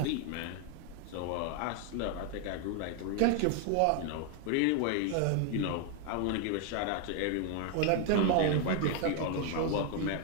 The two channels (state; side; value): different; both; correlation 0.00